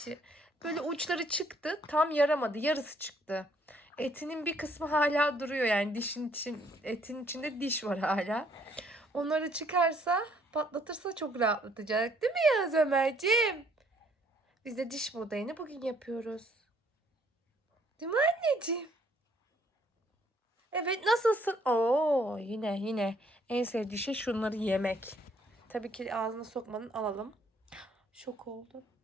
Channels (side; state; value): both; normal; correlation 0.64